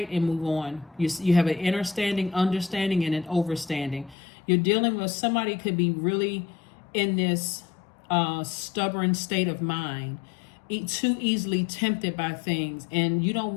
and move on. You have an understanding, and an overstanding. You're dealing with somebody could be really in this stubborn state of mind, too easily tempted by things. And you don't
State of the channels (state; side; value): drops out; right; at 4.2 s